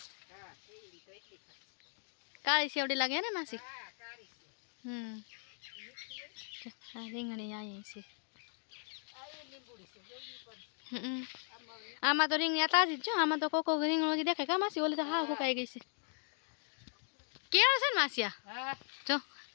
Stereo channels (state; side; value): silent; right; 53 dB below the other